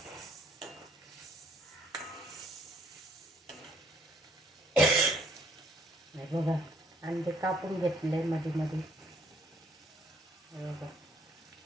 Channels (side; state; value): both; normal; correlation 0.65